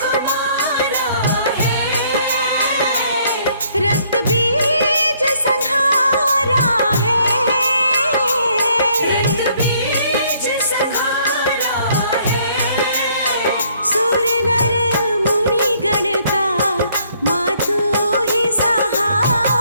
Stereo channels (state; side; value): inverted; both; correlation -0.65